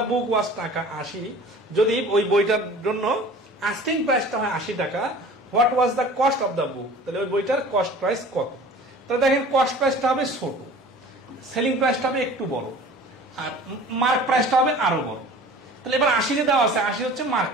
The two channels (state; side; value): normal; both; correlation 0.43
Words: book was টাকা 80, যদি ওই বইটার জন্য আস্কিং প্রাইসটা হয় 80 টাকা, what was the cost of the book, তাহলে ওই বইটার কস্ট প্রাইস কত? তাহলে দেখেন কস্ট প্রাইসটা হবে ছোট, সেলিং প্রাইসটা হবে একটু বড়, আর মার্ক প্রাইসটা হবে আরো বড়। তাহলে এবার 80 দেওয়া আছে, 80 হচ্ছে মার্ক